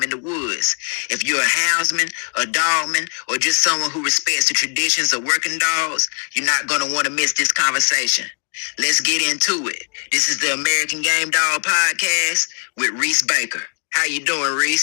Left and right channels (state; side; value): quieter; right; 39.3 dB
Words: in the woods. If you're a houndsman, a dogman, or just someone who respects the traditions of working dogs, you're not going to want to miss this conversation. Let's get into it. This is the American Game Dog Podcast with Reece Baker. How you doing,